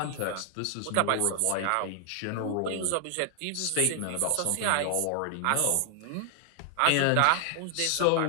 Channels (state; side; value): different; both; correlation 0.00